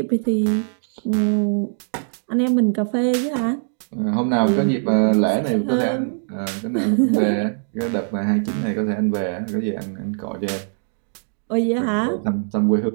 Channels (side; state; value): left; silent; 63 dB below the other